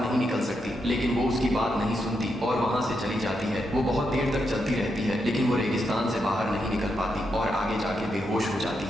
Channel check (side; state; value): both; normal; correlation 0.83